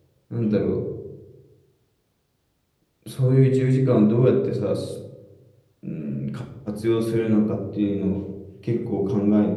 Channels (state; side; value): identical; both; correlation 1.00